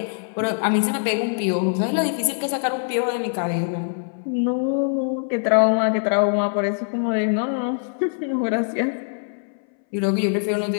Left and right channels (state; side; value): silent; right; 62 dB below the other